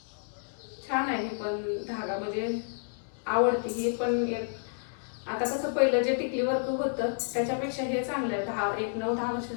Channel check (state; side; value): silent; right; digital silence